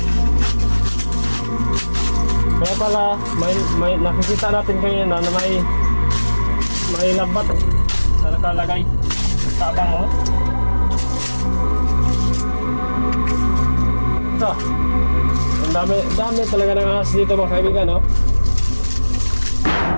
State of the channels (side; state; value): both; inverted; correlation -1.00